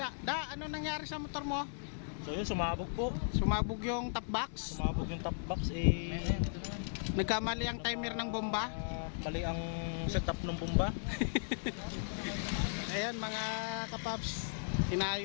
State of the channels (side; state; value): right; silent; 53 dB below the other